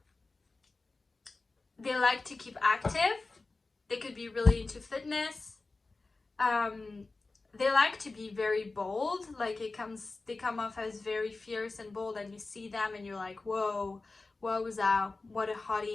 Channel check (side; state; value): right; quieter; 3.6 dB